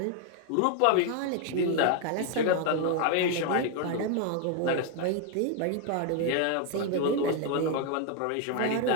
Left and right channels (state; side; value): different; both; correlation 0.01